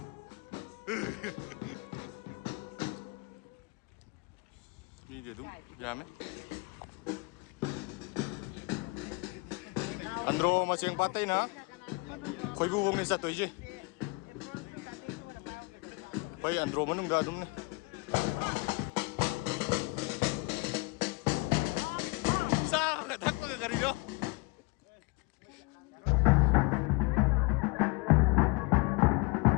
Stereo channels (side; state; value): right; quieter; 25.6 dB